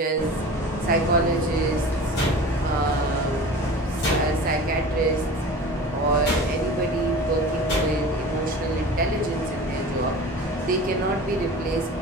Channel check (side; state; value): both; normal; correlation 0.37